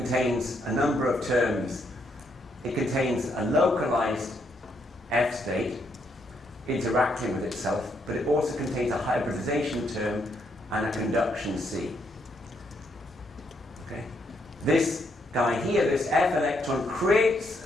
a number of terms. It contains a localized F state interacting with itself, but it also contains a hybridization term and a conduction C. Okay? This guy here, this F electron, creates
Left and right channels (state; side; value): normal; both; correlation 0.75